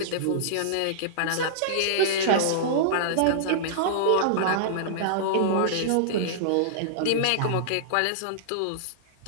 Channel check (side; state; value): both; different; correlation -0.02